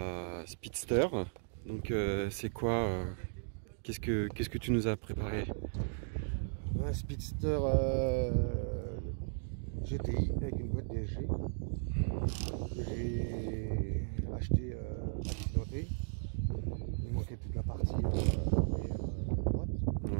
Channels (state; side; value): silent; left; digital silence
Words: Speedster. Donc c'est quoi qu'est-ce que tu nous as préparé? Un Speedster GTI avec une boîte DSG que j'ai acheté accidenté. Il manquait toute la partie arrière droite.